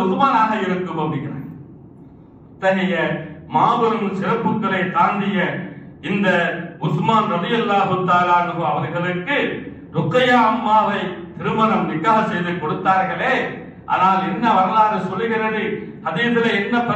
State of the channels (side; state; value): both; identical; correlation 1.00